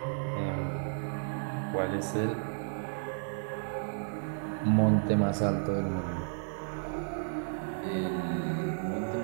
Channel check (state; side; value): silent; left; digital silence